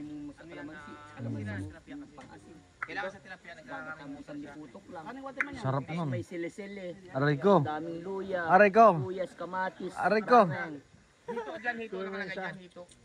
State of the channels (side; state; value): both; identical; correlation 1.00